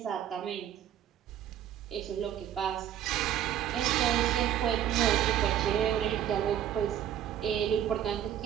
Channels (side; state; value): left; quieter; 10.4 dB